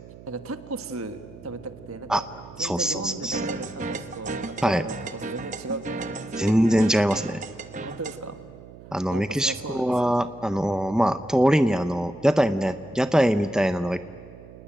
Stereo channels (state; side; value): noise; right; hum, 18 dB below the sound